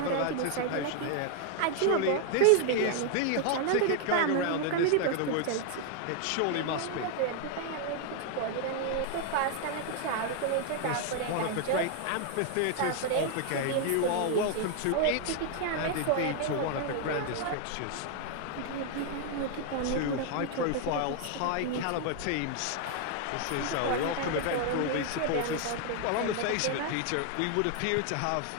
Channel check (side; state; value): both; different; correlation 0.00